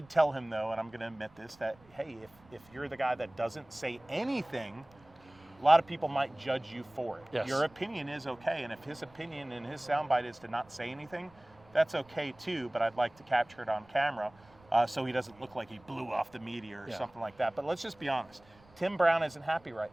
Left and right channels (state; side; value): noise; right; rumble, 27 dB below the sound